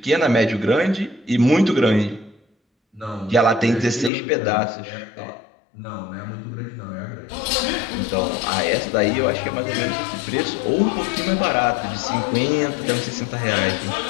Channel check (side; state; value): right; drops out; at 4.1 s